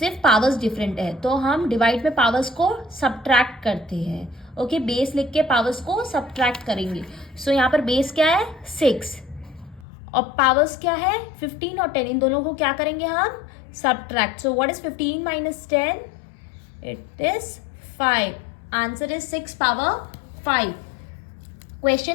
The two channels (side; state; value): right; drops out; at 9.9 s